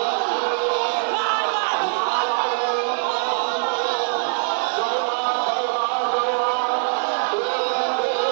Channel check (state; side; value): silent; left; digital silence